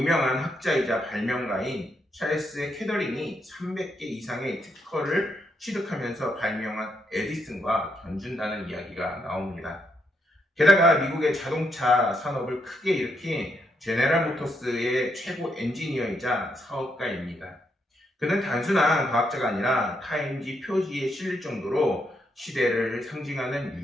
학자이자 발명가인 찰스 캐더링이 300개 이상의 특허를 취득하면서 발명한 에디슨과 견준다는 이야기가 나옵니다. 게다가 미국의 자동차 산업을 크게 일으킨 제네럴 모터스의 최고 엔지니어이자 사업가입니다. 그는 단순한 과학자가 아니라 타임지 표지에 실릴 정도로 시대를 상징하는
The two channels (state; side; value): normal; both; correlation 0.78